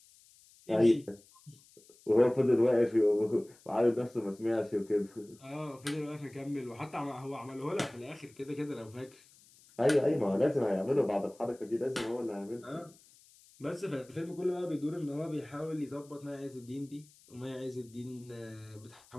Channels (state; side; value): noise; left; hiss, 26 dB below the sound